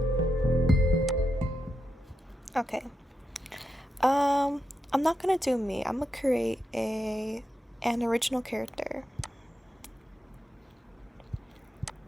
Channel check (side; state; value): both; normal; correlation 0.86